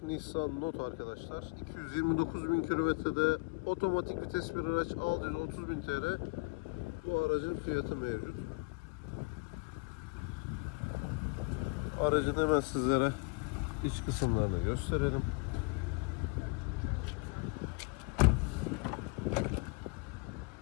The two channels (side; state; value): right; quieter; 29.2 dB